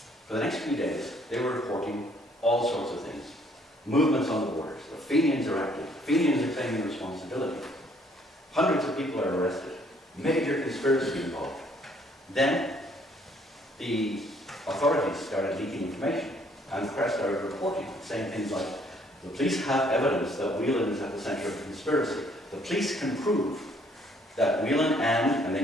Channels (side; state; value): both; normal; correlation 0.64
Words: For the next few days, they were reporting all sorts of things. Movements on the borders. The Fenians are active. Fenians are claiming responsibility. Hundreds of people are arrested. Major conspiracy involved. Then, the authorities started leaking information, and the press started reporting, saying things like, the police have evidence that Whelan is at the centre of the conspiracy. The police can prove that Whelan and